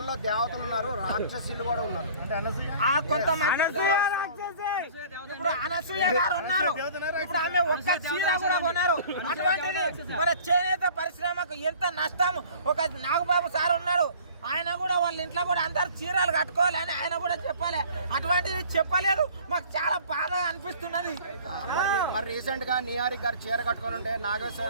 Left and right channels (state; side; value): inverted; both; correlation -0.49